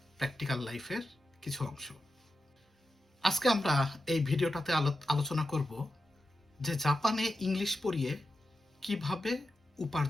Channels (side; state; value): both; normal; correlation 0.90